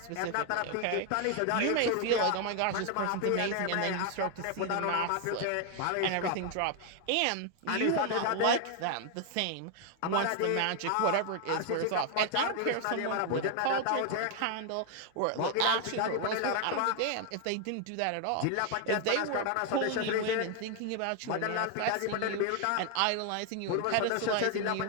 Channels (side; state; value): both; different; correlation 0.00